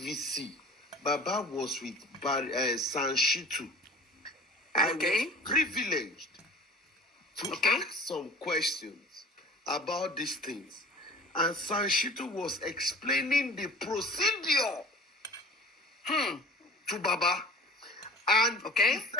Baba was with Sanshitu. I was privileged to ask some questions about these things. And Sanshitu was explaining the procedure to Baba. And he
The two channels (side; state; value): both; normal; correlation 0.41